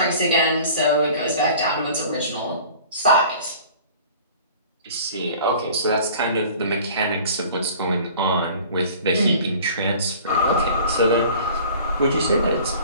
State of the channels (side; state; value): both; inverted; correlation -0.46